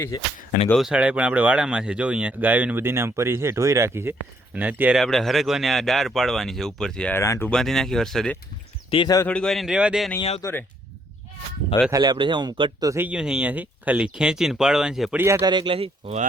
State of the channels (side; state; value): both; normal; correlation 0.69